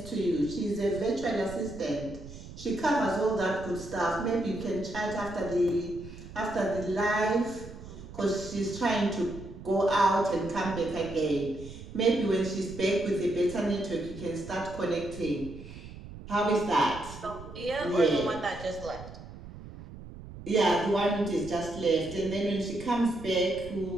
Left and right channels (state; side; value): noise; right; rumble, 14 dB below the sound